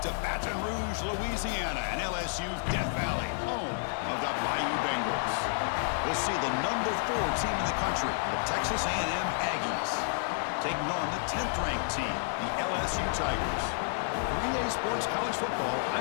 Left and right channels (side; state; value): right; silent; 57 dB below the other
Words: to Baton Rouge, Louisiana, and LSU's Death Valley, home of the Bayou Bengals. We'll see the number 4 team in the country, the Texas A&M Aggies, taking on the 10th-ranked team, the LSU Tigers. For EA Sports College Football,